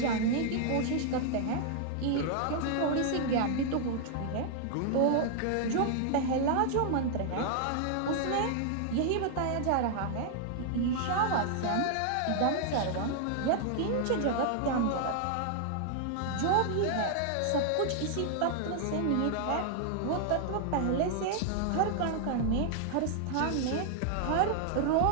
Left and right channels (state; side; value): different; both; correlation 0.00